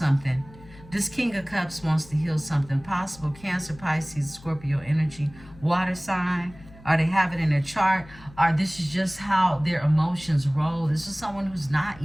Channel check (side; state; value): left; noise; hum, 21 dB below the sound